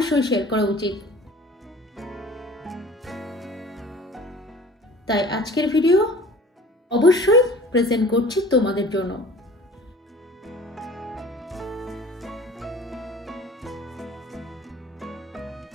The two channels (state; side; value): normal; both; correlation 0.45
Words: শেয়ার করা উচিত। তাই আজকের ভিডিও অবশ্যই প্রেজেন্ট করছি তোমাদের জন্য।